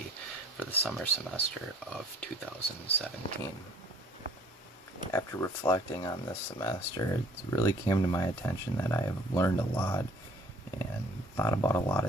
for the summer semester of 2017. After reflecting on this semester, it really came to my attention that I have learned a lot and thought about a lot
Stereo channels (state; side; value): normal; both; correlation 0.56